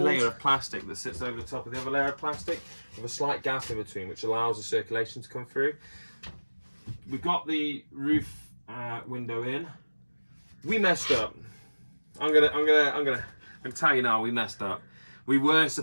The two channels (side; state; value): both; inverted; correlation -1.00